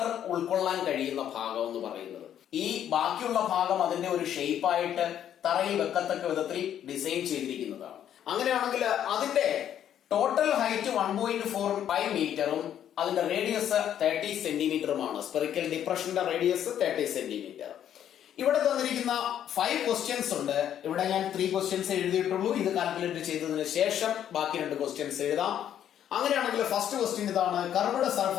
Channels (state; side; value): quieter; right; 10.2 dB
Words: ഉൾക്കൊള്ളാൻ കഴിയുന്ന ഭാഗം എന്ന് പറയുന്നത്. ഈ ബാക്കിയുള്ള ഭാഗം അതിന്റെ ഒരു ഷേപ്പായിട്ട് തറയിൽ വെക്കത്തക്ക വിധത്തിൽ ഡിസൈൻ ചെയ്തിരിക്കുന്നതാണ്. അങ്ങനെയാണെങ്കിൽ അതിന്റെ ടോട്ടൽ ഹൈറ്റ് 1.45 മീറ്ററും അതിന്റെ റേഡിയസ് 30 സെന്റിമീറ്ററുമാണ്. സ്പെറിക്കൽ ഡിപ്രഷന്റെ റേഡിയസ് 30 സെന്റിമീറ്റർ. ഇവിടെ തന്നിരിക്കുന്ന 5 ക്വസ്റ്റ്യൻസ് ഉണ്ട്. ഇവിടെ ഞാൻ 3 ക്വസ്റ്റ്യൻസ് എഴുതിയിട്ടുള്ളൂ. ഇത് കാൽക്കുലേറ്റ് ചെയ്തതിന് ശേഷം ബാക്കി 2 ക്വസ്റ്റ്യൻസ് എഴുതാം. അങ്ങനെയാണെങ്കിൽ ഫസ്റ്റ് ക്വസ്റ്റ്യൻ ഇതാണ്: curved